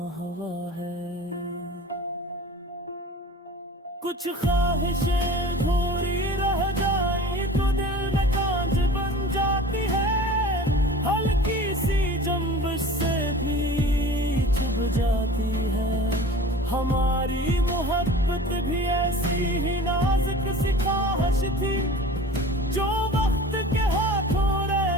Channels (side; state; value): both; normal; correlation 0.41